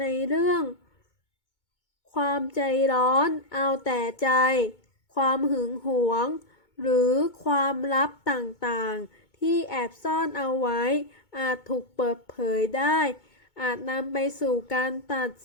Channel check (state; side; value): late; right; 2.2 ms